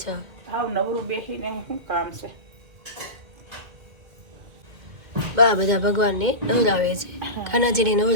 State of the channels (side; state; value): left; late; 2.1 ms